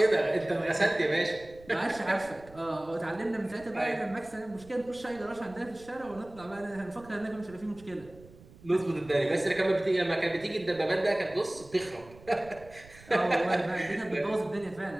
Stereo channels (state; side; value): noise; right; rumble, 22 dB below the sound